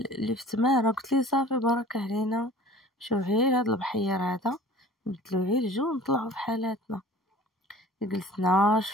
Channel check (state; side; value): normal; both; correlation 0.45